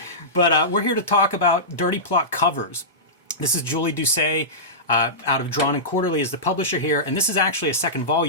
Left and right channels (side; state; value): both; normal; correlation -0.16